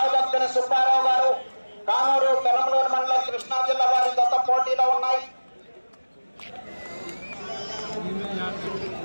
సుబ్బారావు గారు కానూరు పెనమలూరు మండలం కృష్ణా జిల్లా వారి జత పోటీలో ఉన్నాయి.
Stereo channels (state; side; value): inverted; both; correlation -1.00